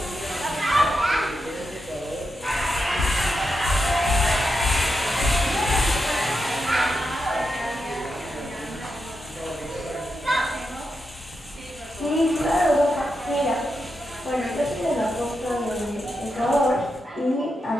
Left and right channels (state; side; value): normal; both; correlation 0.86